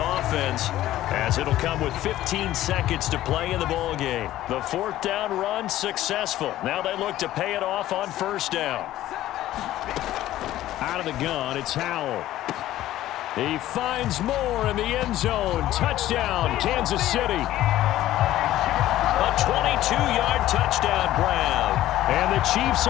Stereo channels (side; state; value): right; quieter; 14.2 dB